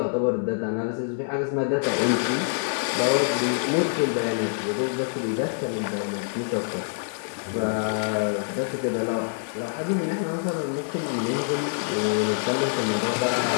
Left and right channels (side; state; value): right; silent; digital silence